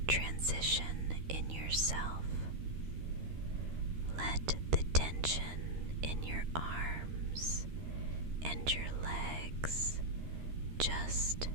transition in yourself. Let the tension in your arms and your legs just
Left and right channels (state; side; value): late; left; 13 ms